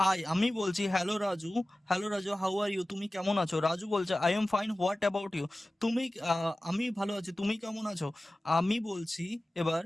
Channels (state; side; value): normal; both; correlation 0.96